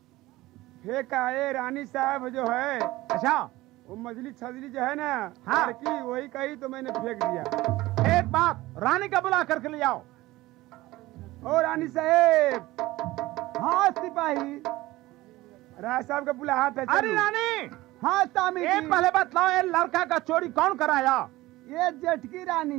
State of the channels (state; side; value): quieter; left; 18.3 dB